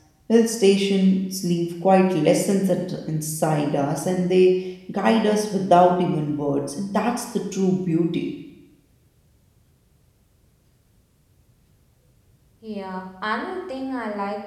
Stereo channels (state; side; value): identical; both; correlation 1.00